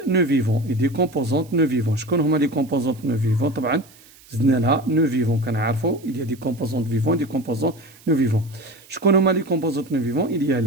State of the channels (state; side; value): noise; right; hiss, 25 dB below the sound